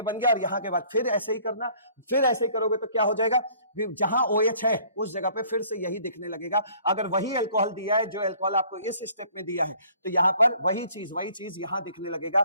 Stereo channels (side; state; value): both; inverted; correlation -0.56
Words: बन गया। और यहाँ के बाद फिर ऐसे ही करना, फिर ऐसे ही करोगे तो क्या हो जाएगा, जहां OH है उस जगह पे फिर से यही दिखने लगेगा। अगर वही अल्कोहल दिया है जो अल्कोहल आपको इस स्टेप में दिया है तो यहाँ पर वही चीज यहाँ दिखने लगेगा